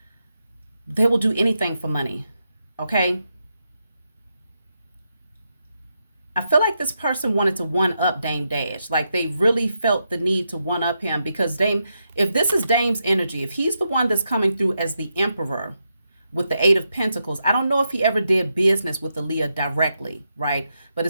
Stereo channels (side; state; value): both; inverted; correlation -0.84